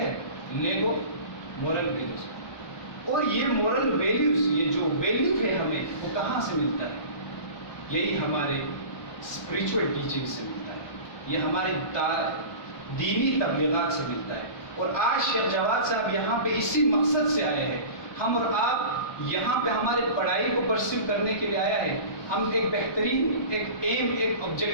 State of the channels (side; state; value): right; late; 1.2 ms